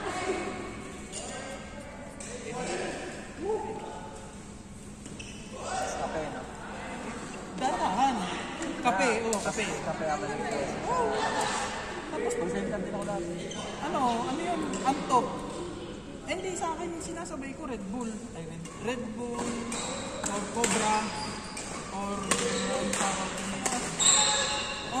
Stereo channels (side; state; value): both; identical; correlation 1.00